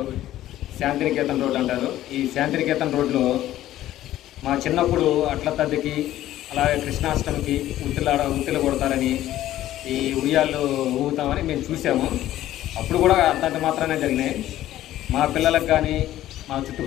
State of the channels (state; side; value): quieter; right; 13.7 dB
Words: శాంతినికేతన్ రోడ్ అంటారు. ఈ శాంతినికేతన్ రోడ్లో మా చిన్నప్పుడు అట్ల తద్దికి అలాగే కృష్ణాష్టమికి ఉత్తిలు కొడతారని, ఈ ఉయ్యాళ్ళు ఊగుతామని మేము చూసాము. అప్పుడు కూడా అంతంత మాత్రమే జరిగినాయి. మా పిల్లలకు కానీ మా